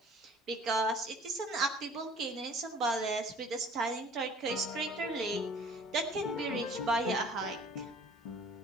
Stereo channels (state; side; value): normal; both; correlation 0.50